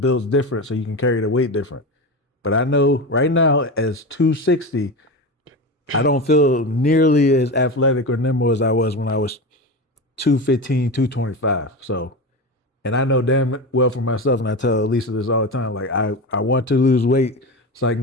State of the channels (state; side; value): normal; both; correlation 0.23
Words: different, so you can carry the weight different. But I know right now, as 260, I don't feel nearly as athletic or nimble as I was when I was 215, 225. So, and I know damn well for myself, and I tell Lisa this all the time, like I want to lose weight so I